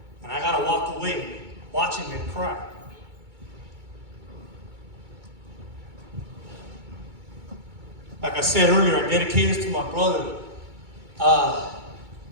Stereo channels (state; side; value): late; left; 2.2 ms